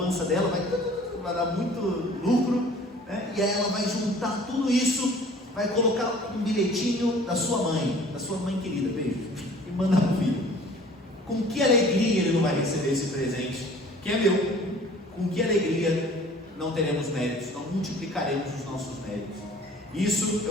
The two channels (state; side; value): normal; both; correlation 0.49